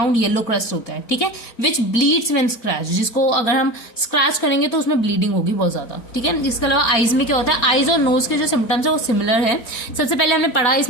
येलो क्रस्ट होता है, ठीक है, विच ब्लीड्स व्हेन स्क्रैच, जिसको अगर हम स्क्रैच करेंगे तो उसमें ब्लीडिंग होगी बहुत ज्यादा, ठीक है। इसके अलावा आईज में क्या होता है, आईज और नोज के जो सिम्टम्स है वो सिमिलर है। सबसे पहले हमने पढ़ा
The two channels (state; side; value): late; right; 4.4 ms